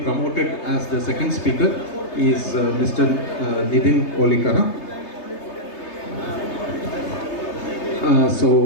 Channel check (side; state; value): right; late; 3.3 ms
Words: promoted as the second speaker, is Mr. Nidhin Olikara.